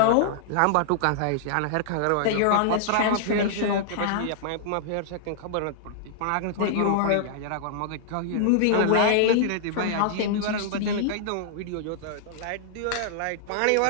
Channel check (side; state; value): both; different; correlation -0.01